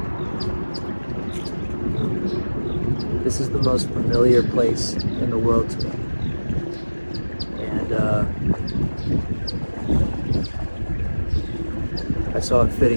This is the most familiar place in the world to me. And I saw it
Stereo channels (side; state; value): both; inverted; correlation -1.00